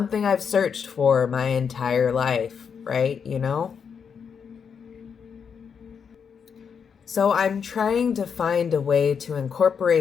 I've searched for my entire life, right? You know? So I'm trying to find a way to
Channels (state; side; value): quieter; right; 6.7 dB